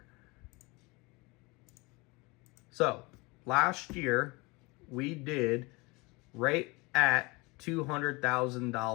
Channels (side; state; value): right; quieter; 25.6 dB